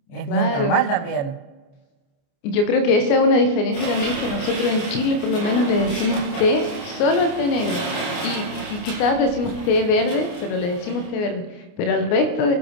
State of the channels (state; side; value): late; right; 29 ms